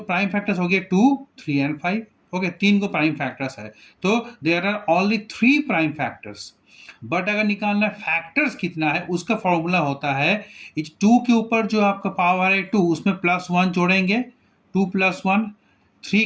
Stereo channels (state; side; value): identical; both; correlation 1.00